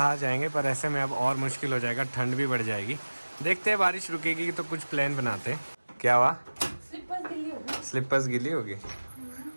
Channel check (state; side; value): inverted; both; correlation -1.00